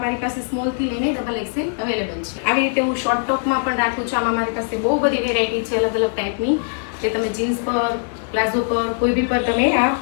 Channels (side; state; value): right; silent; digital silence